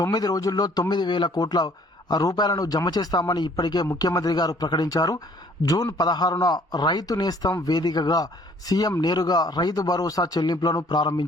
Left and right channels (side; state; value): both; normal; correlation 0.58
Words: 9 రోజుల్లో 9,000 కోట్ల రూపాయలను జమ చేస్తామని ఇప్పటికే ముఖ్యమంత్రి గారు ప్రకటించారు. జూన్ 16న రైతు నేస్తం వేదికగా సీఎం నేరుగా రైతు భరోసా చెల్లింపులను